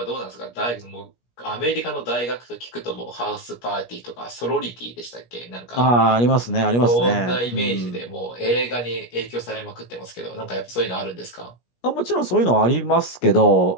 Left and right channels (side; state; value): right; late; 17 ms